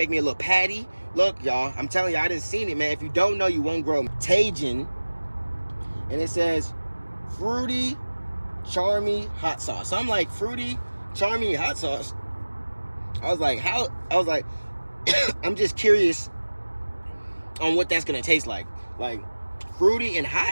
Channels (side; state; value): both; inverted; correlation -1.00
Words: me a little patty. Look, y'all, I'm telling you, I didn't seen it, man. If you don't know, you won't grow. Tajin. And it says fruity, charmy hot sauce. So I'm like, fruity, charmy hot sauce. I was like, I'm just curious on what that's gonna taste like. Like fruity and